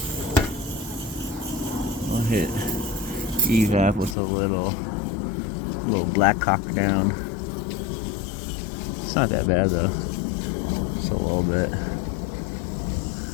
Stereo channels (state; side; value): drops out; right; at 4.2 s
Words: I'll hit evap with a little black cock down. It's not that bad though. Just a little bit.